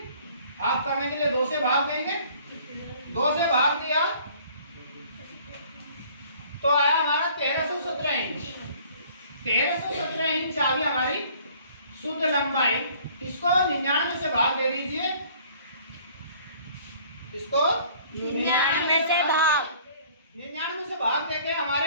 हाफ करने के लिए 2 से भाग देंगे। 2 से भाग दिया तो आया हमारा 1317 इंच। 1317 इंच आ गई हमारी शुद्ध लंबाई। इसको 99 से भाग दे दीजिए, इसको 99 से भाग देके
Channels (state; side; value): inverted; both; correlation -0.55